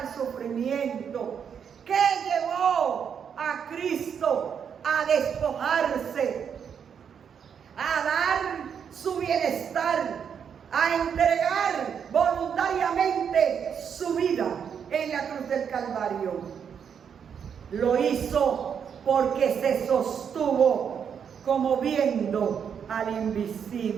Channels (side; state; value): left; quieter; 7.5 dB